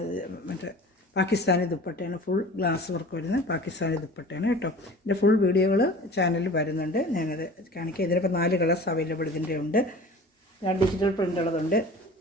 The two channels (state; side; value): normal; both; correlation 0.41